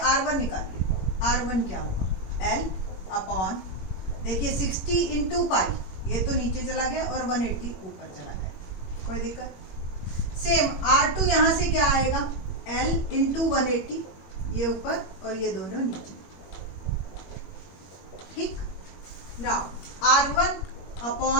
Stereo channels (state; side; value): late; right; 21 ms